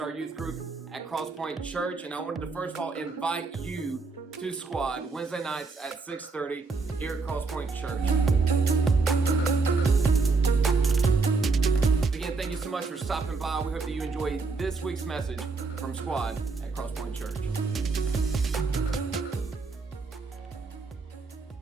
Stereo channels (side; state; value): left; quieter; 4.1 dB